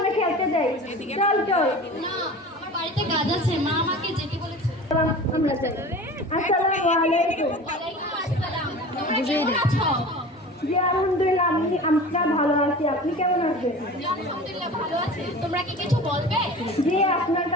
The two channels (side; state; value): both; normal; correlation 0.37